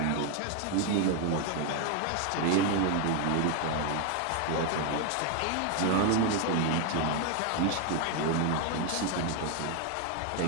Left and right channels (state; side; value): different; both; correlation 0.01